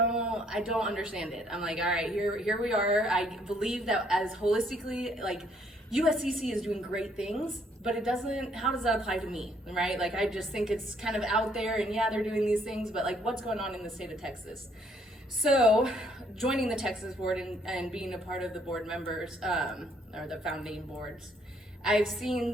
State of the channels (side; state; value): both; normal; correlation 0.67